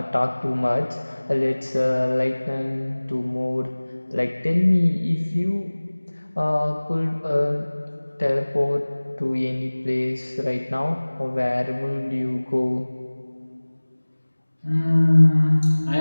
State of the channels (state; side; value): inverted; both; correlation -1.00